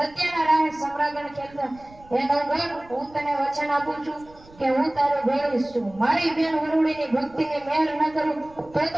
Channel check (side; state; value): right; noise; rumble, 24 dB below the sound